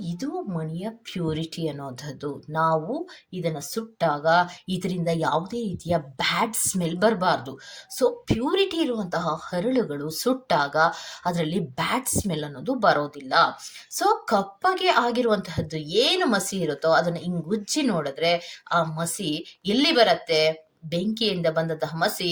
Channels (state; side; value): identical; both; correlation 1.00